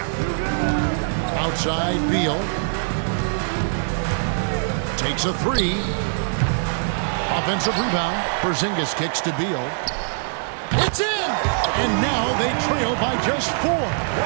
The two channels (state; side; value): silent; left; digital silence